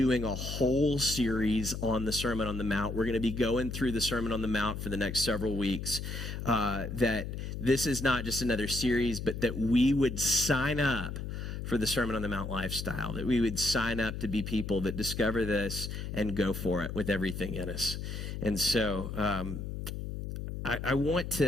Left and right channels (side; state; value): left; noise; hum, 6 dB below the sound